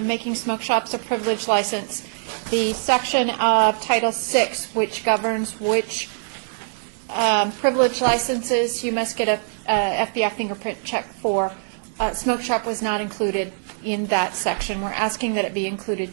making smoke shops a privilege license, the section of Title VI, which governs which privilege licenses you must get a FBI fingerprint check for, smoke shop was not included in that section. We're asking that it be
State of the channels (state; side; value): silent; left; digital silence